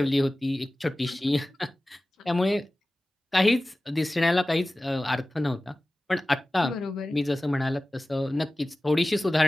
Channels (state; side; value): normal; both; correlation 0.97